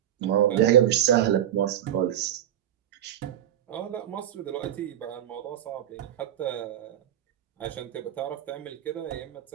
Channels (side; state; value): left; quieter; 11.3 dB